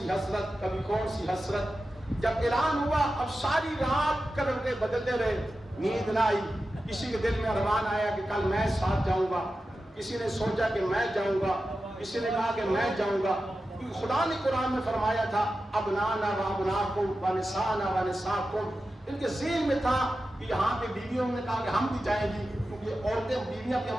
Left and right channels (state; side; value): normal; both; correlation 0.92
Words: حسرت, کبھی کون سی حسرت. جب اعلان ہوا اب ساری رات کروٹیں بدلتے رہے, نیند نہ آئی. کسی کے دل میں ارمان آیا کہ کل میں ساتھ جاؤں گا, کسی نے سوچا کہ میں جاؤں گا, کسی نے کہا کہ میں جاؤں گا. خدا نے قرآن میں فرمایا تھا ابنانا و ابناکم و نسانا و نساکم, ان کے ذہن میں تھا کہ یہاں پہ بیویوں نے کہا کہ ہم بھی جائیں گی, کیونکہ عورتیں بیویاں